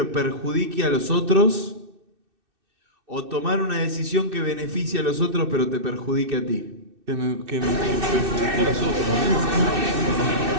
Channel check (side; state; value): left; late; 2.6 ms